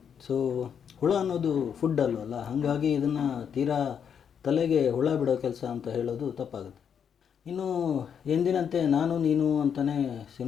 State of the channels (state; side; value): quieter; right; 7.7 dB